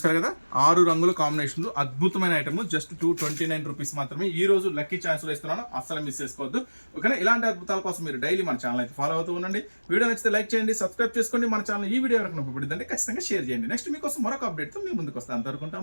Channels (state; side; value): inverted; both; correlation -1.00